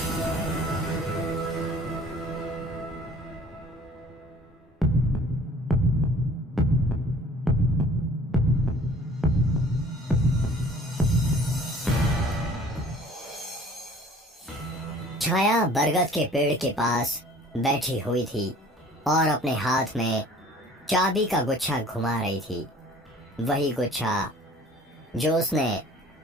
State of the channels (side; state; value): both; normal; correlation 0.51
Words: छाया बरगद के पेड़ के पास बैठी हुई थी और अपने हाथ में चाबी का गुच्छा घुमा रही थी। वही गुच्छा जो उसने